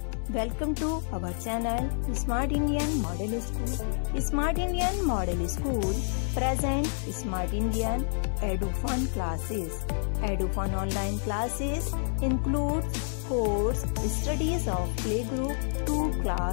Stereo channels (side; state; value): right; silent; digital silence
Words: welcome to our channel Smart Indian Model School. Smart Indian Model School present Smart Indian EduFun classes. EduFun online classes include course studies of playgroup to